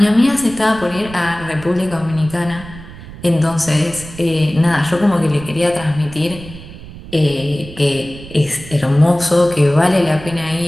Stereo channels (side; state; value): right; noise; rumble, 16 dB below the sound